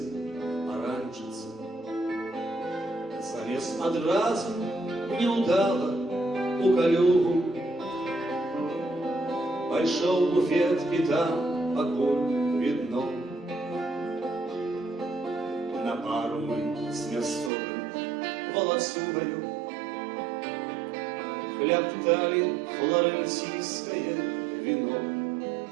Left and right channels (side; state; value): left; drops out; at 17.5 s